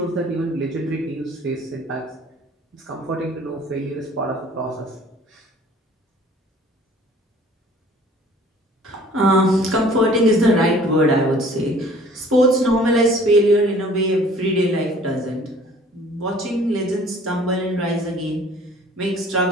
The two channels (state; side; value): normal; both; correlation 0.52